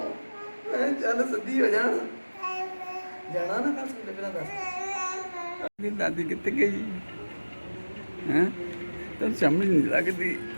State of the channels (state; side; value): inverted; both; correlation -1.00